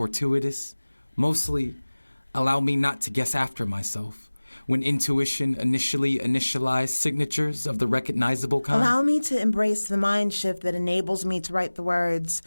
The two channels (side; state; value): both; inverted; correlation -1.00